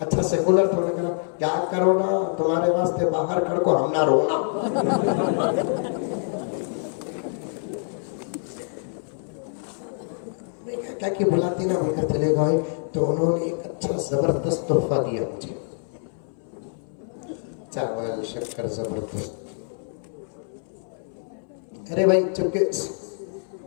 अच्छा सेकुलर था, उन्होंने कहा क्या कोरोना तुम्हारे वास्ते बाहर खड़ को हम ना रोना। क्या कि बुलाती ना होकर चले गए, तो उन्होंने एक अच्छा जबरदस्त तोहफा दिया मुझे, चावल शक्कर जबरदस्त। अरे भाई चुपके,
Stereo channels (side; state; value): right; silent; 61 dB below the other